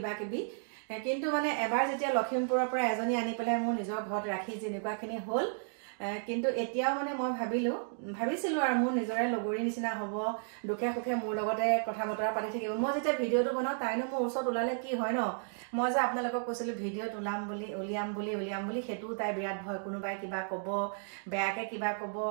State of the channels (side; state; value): left; silent; digital silence